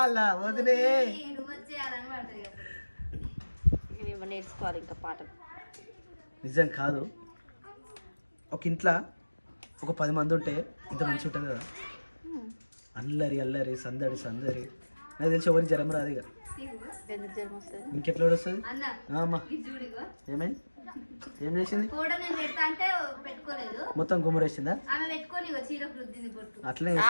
వదినే. నేర్చుకోవాలి ఇంకా పాటలు. నిజం కాదు, ఒక ఇంట్లో ఒక 10 మంది ఉంటే ఇంత మంచి ఉంటుంది కదా. అల్లరి అల్లరి సందడి సందడి. నాకు తెలిసి ఎవరికి జ్వరం రాదు ఇక. ఇంకెట్లా వస్తుంది అమ్మా? ఏమైంది? ఏం చేసింది? మొత్తం గుమ్మరేసిందా? అట్లనే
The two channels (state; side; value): inverted; both; correlation -1.00